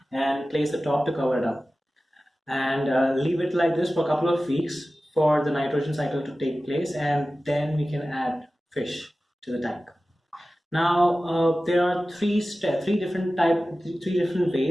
and place the top to cover it up. And leave it like this for a couple of weeks for the nitrogen cycle to take place, and then we can add fish to the tank. Now, there are three different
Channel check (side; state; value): both; normal; correlation 0.96